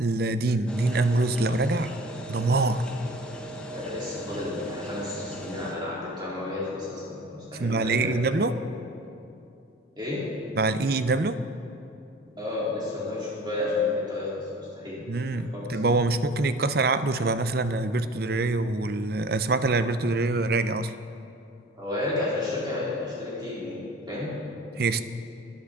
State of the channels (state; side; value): normal; both; correlation 0.43